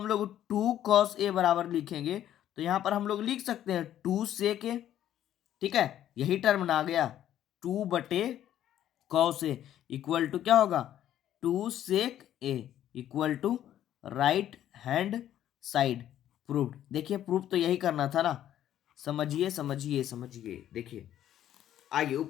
लोग 2 कॉस ए बराबर लिखेंगे, तो यहाँ पर हम लोग लिख सकते हैं 2 सेक ए। ठीक है, यही टर्म ना आ गया 2 बटे कॉस ए इक्वल टू क्या होगा 2 sec A equal to right hand side proved. देखिए प्रूव तो यही करना था ना, समझिए समझिए समझिए। देखिए आइए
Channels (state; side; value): quieter; right; 11.5 dB